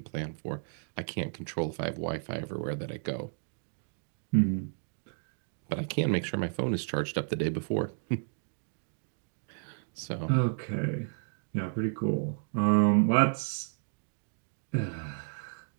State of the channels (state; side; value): silent; left; digital silence